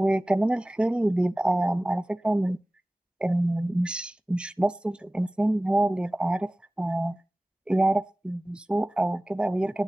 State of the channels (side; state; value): both; normal; correlation 0.98